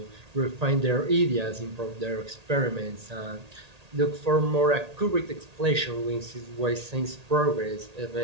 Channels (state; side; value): late; left; 1.8 ms